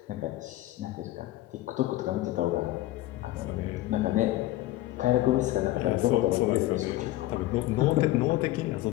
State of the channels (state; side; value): quieter; right; 16.1 dB